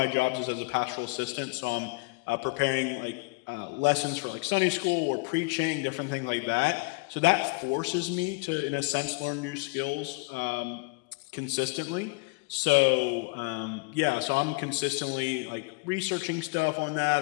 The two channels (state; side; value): quieter; right; 27.1 dB